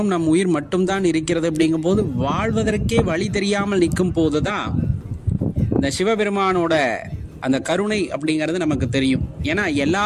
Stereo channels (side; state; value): both; identical; correlation 1.00